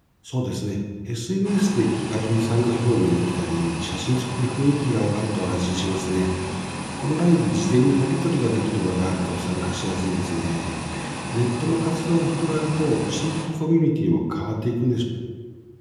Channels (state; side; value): identical; both; correlation 1.00